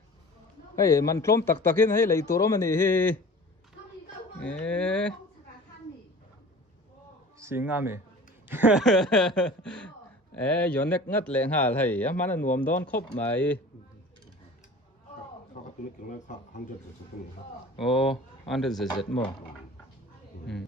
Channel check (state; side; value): normal; both; correlation 0.41